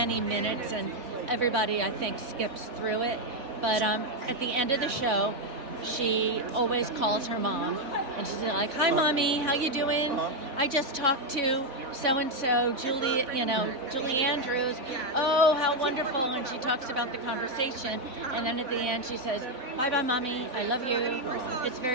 minutes, and everybody, I think, skips through it. But at the end of the show, she always calls her mom, and she's like, "Hi, Mommy, how you doing? I just talked to so-and-so, Julie Andrews. Oh, how wonderful." And she talks about the conversation, and then at the end she says, "Bye-bye, Mommy, I love you." It's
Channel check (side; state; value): left; late; 3.9 ms